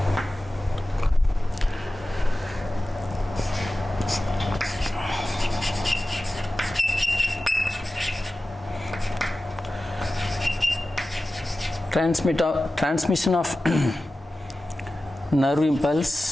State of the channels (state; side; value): normal; both; correlation 0.95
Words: transmission of nerve